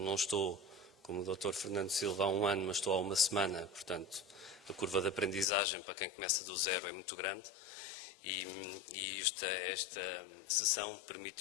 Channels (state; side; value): drops out; right; at 5.5 s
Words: não estou como o Dr. Fernando Silva há um ano, mas estou há uma semana, portanto, a curva de aprendizagem para quem começa do zero é muito grande e esta sessão